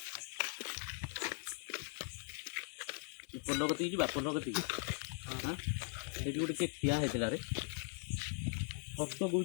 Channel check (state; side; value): silent; right; 51 dB below the other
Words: पोलगती जी पोलगती हां एटी गोटे के ठिया हेतला रे फटो